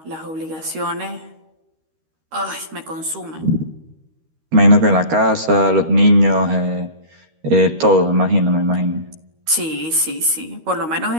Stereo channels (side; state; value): left; late; 13 ms